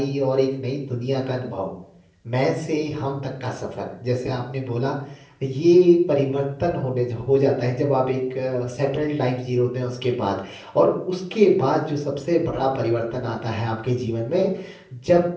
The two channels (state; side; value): identical; both; correlation 1.00